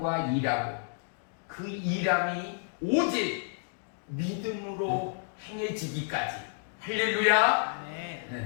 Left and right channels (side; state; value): right; silent; digital silence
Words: 일하고, 그 일함이 오직 믿음으로 행해지기까지. 할렐루야!